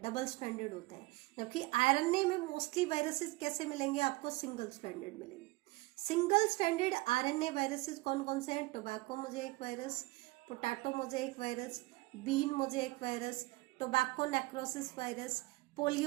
डबल स्ट्रैंडेड होता है, जबकि आरएनए में मोस्टली वायरसेस कैसे मिलेंगे आपको, सिंगल स्ट्रैंडेड मिलेंगे। सिंगल स्ट्रैंडेड आरएनए वायरसेस कौन कौन से हैं, tobacco mosaic virus, potato mosaic virus, bean mosaic virus, tobacco necrosis virus,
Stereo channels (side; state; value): left; quieter; 22.4 dB